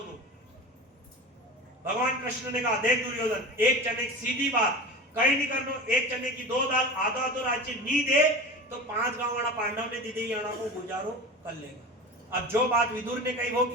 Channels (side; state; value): both; normal; correlation 0.31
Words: तो। भगवान कृष्ण ने कहा, देख दुर्योधन, एक चने की सीधी बात कहीं नहीं करना, एक चने की दो दाल, आधा आधा राज्य नहीं दे तो 5 गांव वाला पांडव ने दीदी याना को गुजारो कर लेगा। अब जो बात विदुर ने कही वो